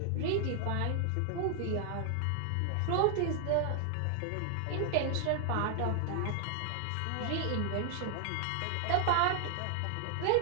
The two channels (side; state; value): both; different; correlation 0.00